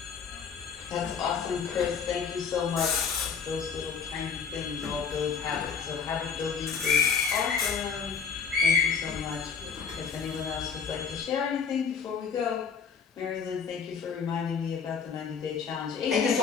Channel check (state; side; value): quieter; right; 6.2 dB